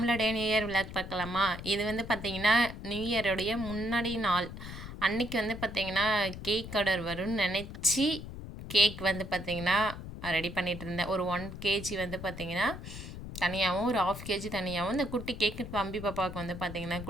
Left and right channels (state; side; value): noise; left; rumble, 10 dB below the sound